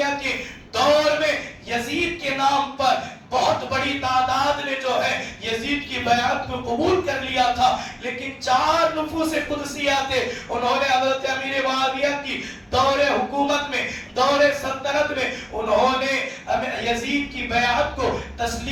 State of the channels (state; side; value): identical; both; correlation 1.00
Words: کے دور میں یزید کے نام پر بہت بڑی تعداد نے جو ہے یزید کی بیعت کو قبول کر لیا تھا. لیکن 4 نفوس قدسیہ تھے، انہوں نے حضرت امیر معاویہ کی دور حکومت میں، دور سلطنت میں انہوں نے یزید کی بیعت کو